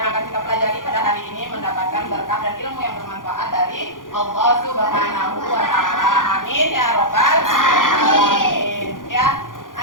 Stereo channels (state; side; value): late; right; 0.89 ms